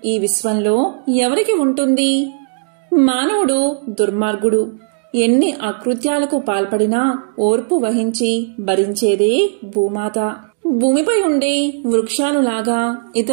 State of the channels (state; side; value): silent; left; digital silence